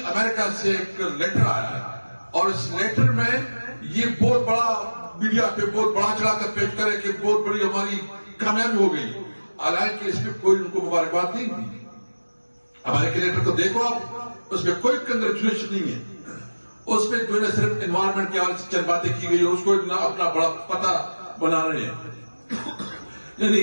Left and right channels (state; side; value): inverted; both; correlation -1.00